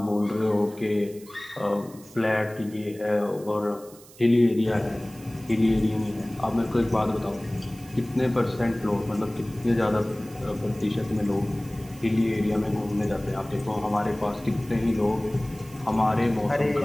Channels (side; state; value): right; noise; hiss, 22 dB below the sound